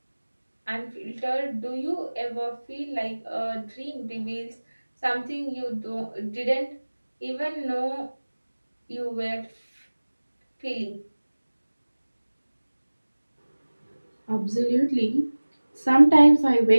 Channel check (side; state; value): both; inverted; correlation -1.00